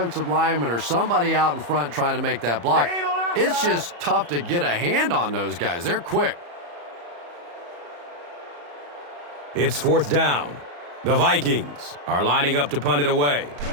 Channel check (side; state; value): left; late; 35 ms